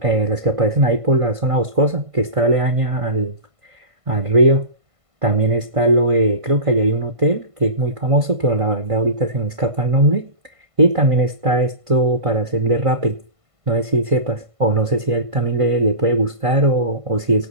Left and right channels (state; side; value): late; left; 1.5 ms